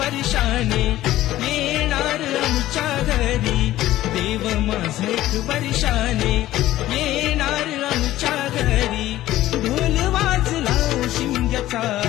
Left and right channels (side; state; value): right; quieter; 14.9 dB